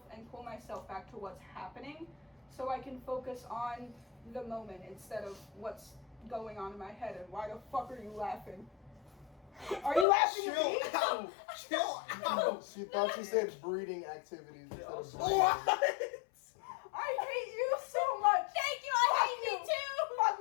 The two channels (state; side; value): drops out; right; at 10.1 s